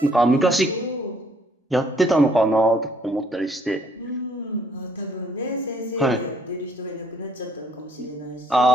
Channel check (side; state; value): both; normal; correlation 0.65